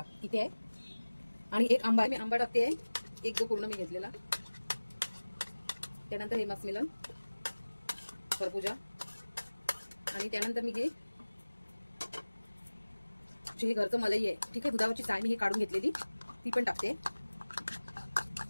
इथे आहे आणि एक आंबा, मी आंबा टाकते एक जो पूर्ण मी घेतलेला. त्यानंतर हे मस्क मेलन, खरबुजा आणि त्यानंतर मी हे घरचं मलई आहे. ठीक आहे, दुधावरची साय मी हे काढून घेतलेली ती पण टाकते.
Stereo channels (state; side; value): inverted; both; correlation -1.00